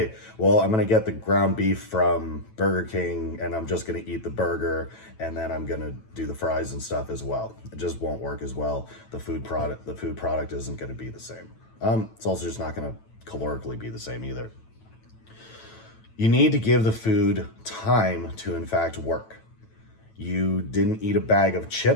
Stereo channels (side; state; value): right; late; 9.1 ms